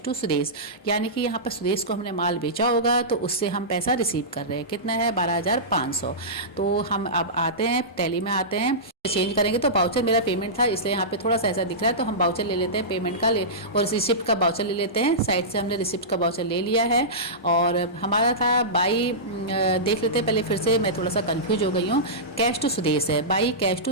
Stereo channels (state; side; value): normal; both; correlation -0.17